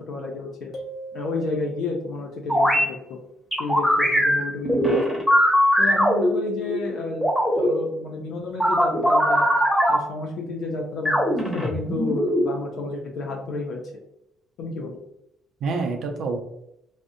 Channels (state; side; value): normal; both; correlation 0.79